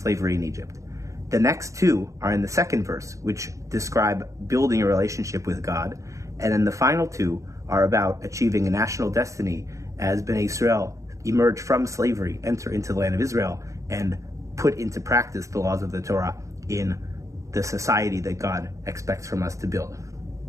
in Egypt. The next 2 are in the second verse, which describe building a relationship with God. And then the final 2 are about achieving a national destiny as Bnei Israel emerge from slavery, enter into the land of Israel, and put into practice the laws of the Torah in the society that God expects from us to build.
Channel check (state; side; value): late; left; 0.15 ms